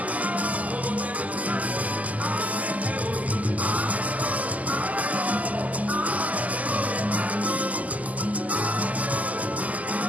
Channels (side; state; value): left; late; 0.076 ms